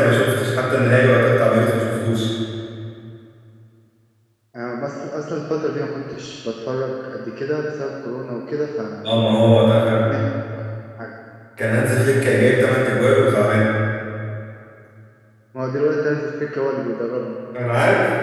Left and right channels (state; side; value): identical; both; correlation 1.00